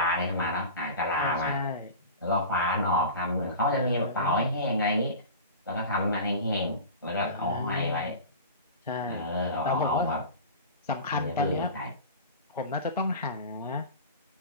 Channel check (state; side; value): inverted; both; correlation -0.34